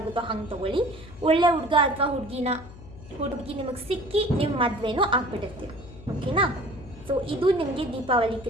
ಹಂಗೆ ತೊಗೊಳ್ಳಿ. ಒಳ್ಳೆ ಹುಡುಗ ಅಥವಾ ಹುಡುಗಿ ನಿಮಗೆ ಸಿಕ್ಕಿ ನಿಮ್ಮ ಮದುವೆನೂ ಆಗ್ಬಿಟ್ಟಿರ್ತೀರ. ಓಕೆನಾ? ಸೊ ಇದು ನಿಮಗೆ ದೀಪಾವಳಿ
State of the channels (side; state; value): left; noise; hum, 17 dB below the sound